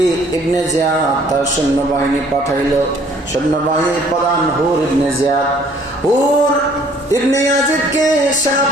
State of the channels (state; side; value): normal; both; correlation 0.59